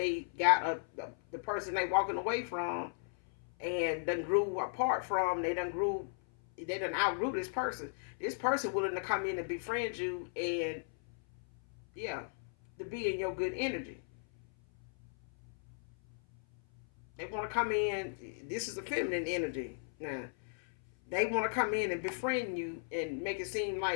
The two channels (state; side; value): silent; right; 54 dB below the other